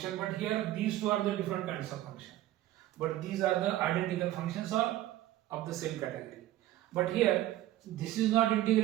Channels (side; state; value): left; quieter; 14.6 dB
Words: but here these two are the different kinds of function. But these are the identical functions or of the same category. But here, this is not